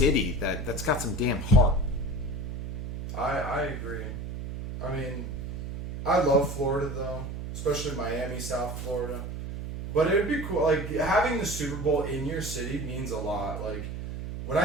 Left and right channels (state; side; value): noise; right; hum, 6 dB below the sound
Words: that's got some damn heart. I agree. I mean, I love Florida though, especially Miami, South Florida. But it would be cool. Having the Super Bowl in your city means a lot. When